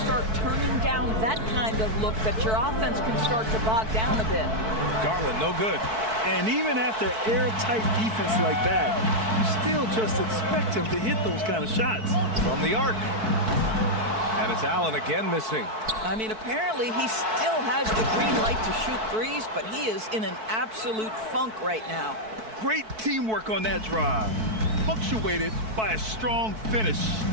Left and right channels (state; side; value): late; left; 4.6 ms